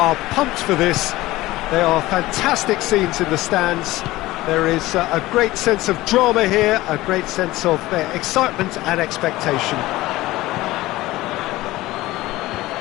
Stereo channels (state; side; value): quieter; right; 18.0 dB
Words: pumped for this. They are fantastic scenes in the stands. There is a great sense of drama here, a great sense of excitement and expectation.